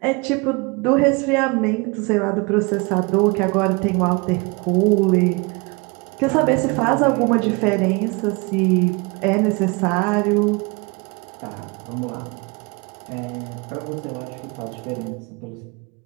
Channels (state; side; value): quieter; left; 28.3 dB